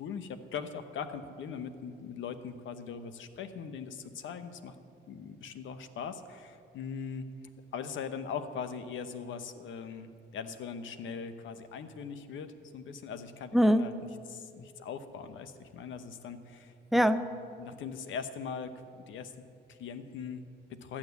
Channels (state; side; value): normal; both; correlation 0.69